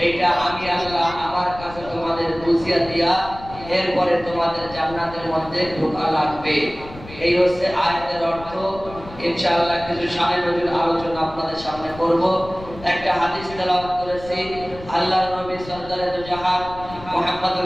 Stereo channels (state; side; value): noise; left; rumble, 16 dB below the sound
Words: এইটা আমি আল্লাহ আমার কাছে তোমাদের বুঝিয়ে দিয়া এরপরে তোমাদের জান্নাতের মধ্যে ঢোকা লাগবে। এই হচ্ছে আয়াতের অর্থ। ইনশাআল্লাহ কিছু শানে নজরুল আলোচনা আপনাদের সামনে করব। একটা হাদিস তেলাওয়াত করেছি, আল্লাহর নবী সরদারে দু জাহান